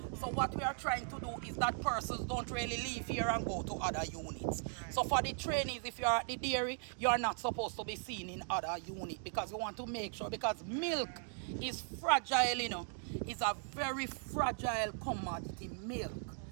So what we are trying to do is that persons don't really leave here and go to other units. So for the trainees, if you're at the dairy, you're not supposed to be seen in other unit because we want to make sure, because milk is fragile, you know. It's a very fragile commodity, milk.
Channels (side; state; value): left; silent; 52 dB below the other